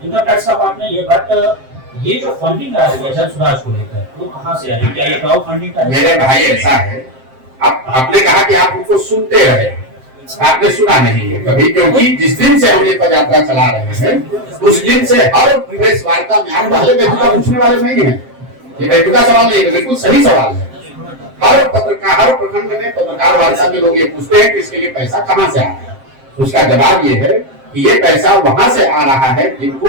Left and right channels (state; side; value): late; left; 7.6 ms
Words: इनका टैक्स साहब आपने ये जो फंडिंग आ रही है जन स्वराज को लेकर, वो कहाँ से आ रही है? क्या ये क्राउड फंडिंग का? मेरे भाई ऐसा है, आपने कहा कि आप उनको सुनते रहे, आपने सुना नहीं है कभी, क्योंकि जिस दिन से हम ये पदयात्रा चला रहे हैं उस दिन से हर प्रेस वार्ता में आप पहले बेतुका पूछने वाले नहीं है। ये बेतुका सवाल नहीं है, बिल्कुल सही सवाल है। हर पत्रकार, हर प्रखंड में पत्रकार वार्ता में लोग ये पूछते हैं कि इसके लिए पैसा कहाँ से आ रहा है। उसका जवाब ये है कि ये पैसा वहां से आ रहा है